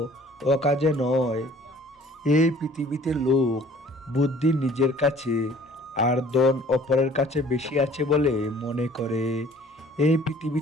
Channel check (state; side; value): normal; both; correlation 0.53